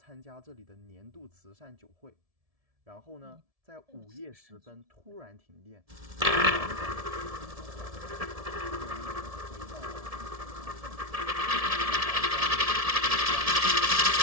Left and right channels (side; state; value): left; late; 1.7 ms